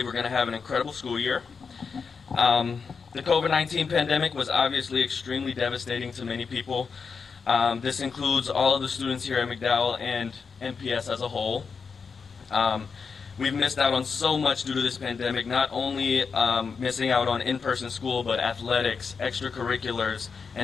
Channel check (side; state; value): right; quieter; 5.5 dB